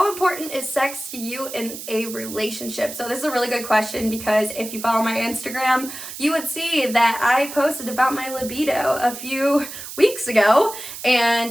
important is sex to you in a relationship? So this is a really good question, because if you follow my Instagram, you would see that I posted about my libido a few weeks ago,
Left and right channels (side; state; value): right; noise; hiss, 10 dB below the sound